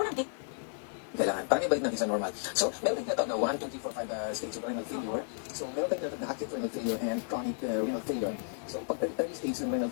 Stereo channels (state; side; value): silent; right; digital silence